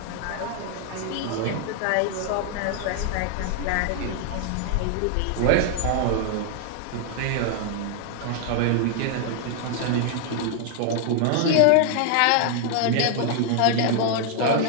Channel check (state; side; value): different; both; correlation 0.00